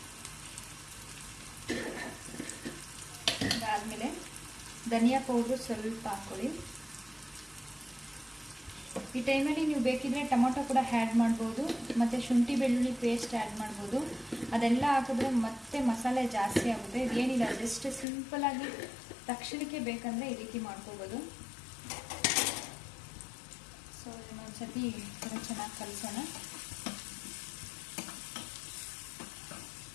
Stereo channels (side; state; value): right; drops out; at 18.1 s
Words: ಅದಾದಮೇಲೆ ಧನಿಯಾ ಪೌಡ್ರು ಸ್ವಲ್ಪ ಹಾಕ್ಕೊಳ್ಳಿ. ಈ ಟೈಮಲ್ಲಿ ನೀವು ಬೇಕಿದ್ರೆ ಟೊಮೊಟೊ ಕೂಡ ಆ್ಯಡ್ ಮಾಡ್ಬೋದು, ಮತ್ತು ಶುಂಠಿ ಬೆಳ್ಳುಳ್ಳಿ ಪೇಸ್ಟ್ ಆ್ಯಡ್ ಮಾಡ್ಬೋದು. ಅದೆಲ್ಲ ಹಾಕಿದ್ರೆ ಮತ್ತೆ ಮಸಾಲೆ ಜಾಸ್ತಿ ಆಗುತ್ತೆ. ಇದೇನಿಲ್ಲ, ಜಸ್ಟ್ ಸಿಂಪಲಾಗಿ ತಕ್ಷಣಕ್ಕೆ ಬೇಕಂದರೆ ಈ ರೀತಿ ಮಾಡ್ಕೋಬೋದು. ಸೊ ಇನ್ನೊಂದು ಸತಿ ಕೂಡ ಚೆನ್ನಾಗಿ ಕಲಿಸೋಣ.